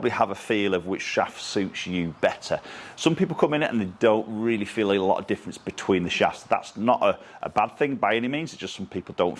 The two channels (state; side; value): identical; both; correlation 1.00